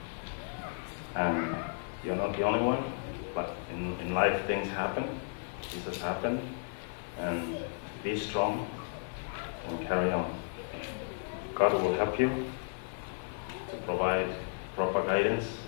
and you're not the only one, but in life things happen. This has happened, and be strong and carry on. God will help you to provide proper guidance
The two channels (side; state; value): right; silent; digital silence